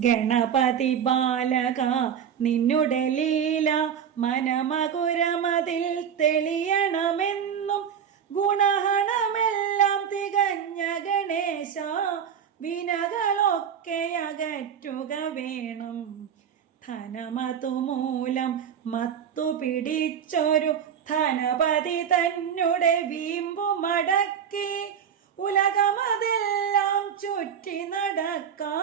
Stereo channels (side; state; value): left; quieter; 8.2 dB